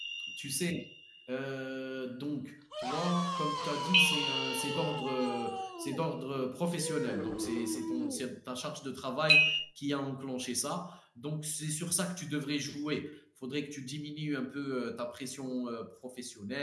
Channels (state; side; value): identical; both; correlation 1.00